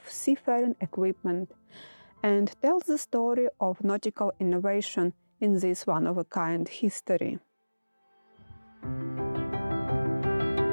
seafaring equipment and tells the story of nautical innovation in this one-of-a-kind history.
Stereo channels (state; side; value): inverted; both; correlation -1.00